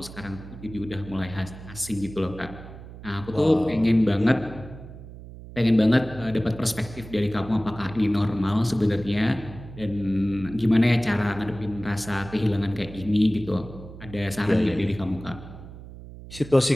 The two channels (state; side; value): noise; right; hum, 15 dB below the sound